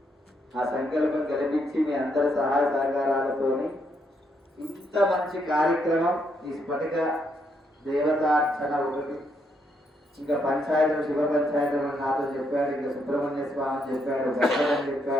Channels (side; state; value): both; normal; correlation 0.75